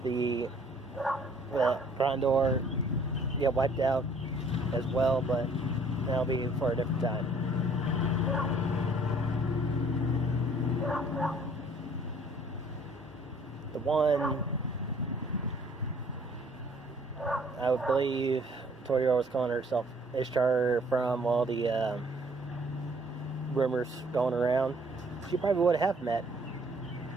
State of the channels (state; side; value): normal; both; correlation 0.59